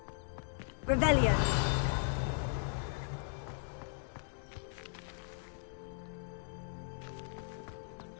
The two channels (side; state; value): right; silent; digital silence